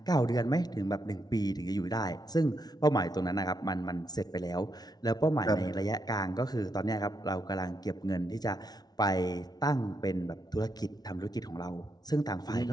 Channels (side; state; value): right; late; 0.19 ms